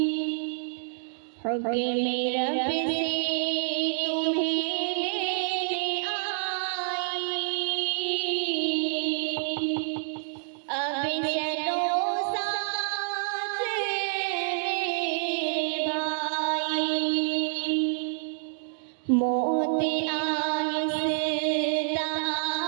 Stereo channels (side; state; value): left; silent; digital silence